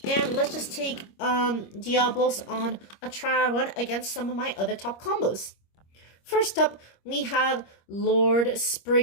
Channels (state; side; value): late; right; 25 ms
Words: And let's just take Diablos on a trial run against some of my other top combos. First up, we have Lord